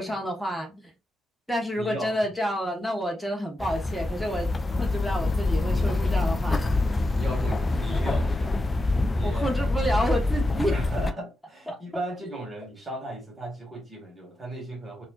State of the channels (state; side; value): normal; both; correlation 0.89